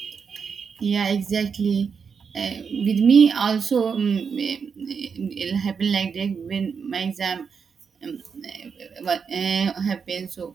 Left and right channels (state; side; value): quieter; left; 6.1 dB